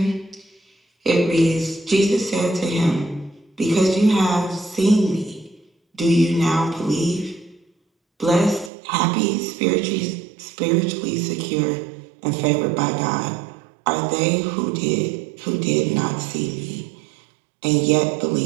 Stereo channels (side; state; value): left; drops out; at 8.7 s